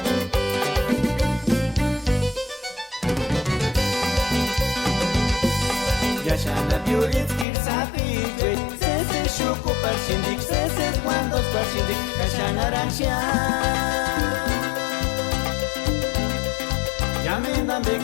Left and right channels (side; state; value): right; drops out; at 7.5 s